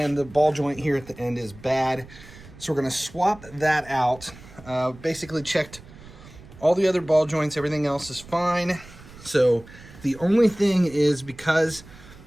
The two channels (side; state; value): right; noise; rumble, 20 dB below the sound